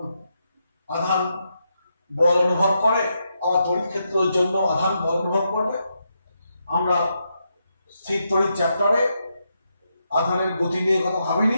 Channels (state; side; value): inverted; both; correlation -0.83